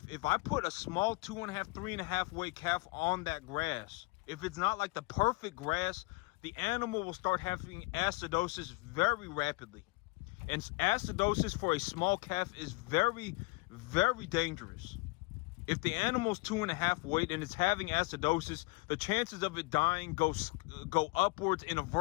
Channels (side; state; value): right; quieter; 25.8 dB